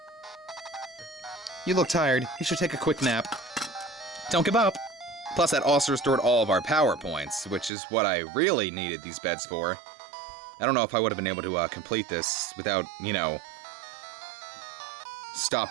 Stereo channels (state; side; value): drops out; left; at 7.7 s